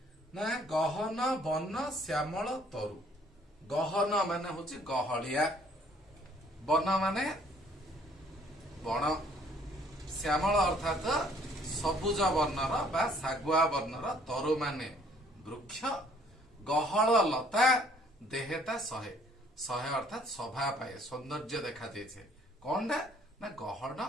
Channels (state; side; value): normal; both; correlation 0.60